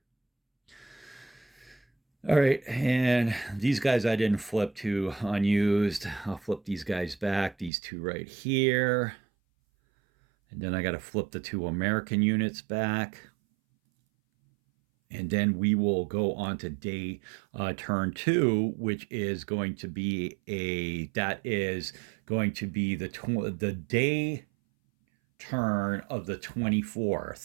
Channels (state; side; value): drops out; left; at 7.7 s